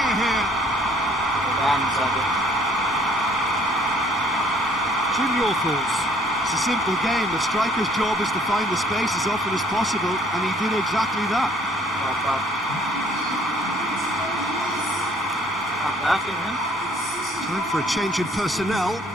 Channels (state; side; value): normal; both; correlation 0.60